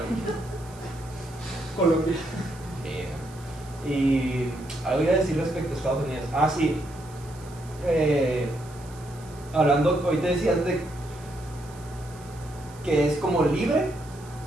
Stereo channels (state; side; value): noise; right; hiss, 22 dB below the sound